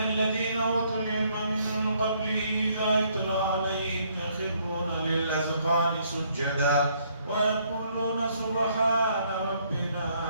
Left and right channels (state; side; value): inverted; both; correlation -0.68